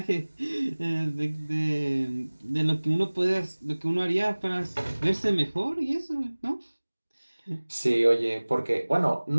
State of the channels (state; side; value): inverted; both; correlation -1.00